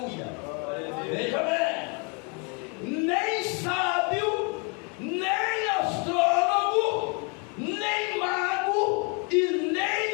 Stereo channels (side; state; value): right; quieter; 34.8 dB